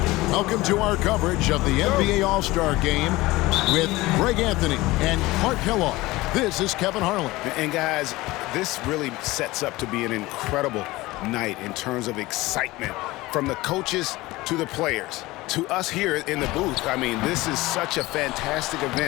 Welcome to our coverage of the NBA All-Star Game with Greg Anthony and Clark Kellogg. This is Kevin Harlan. And guys, this really sets up to be an incredible night in terms of excitement from the coaches to the players to us here in the booth. I mean, this is such a fantastic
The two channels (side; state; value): right; quieter; 19.7 dB